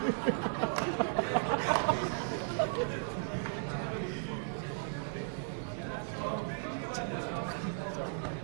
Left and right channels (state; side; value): silent; left; digital silence